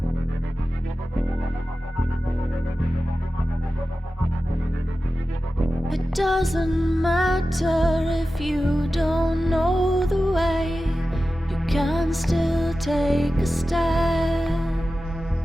It doesn't matter if you don't know the way, you can still take a step.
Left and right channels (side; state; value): both; normal; correlation 0.94